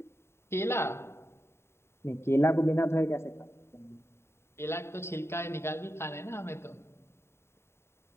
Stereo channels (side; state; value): right; late; 0.12 ms